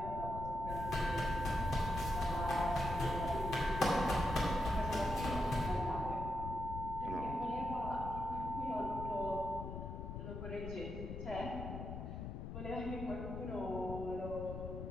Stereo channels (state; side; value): noise; left; rumble, 6 dB below the sound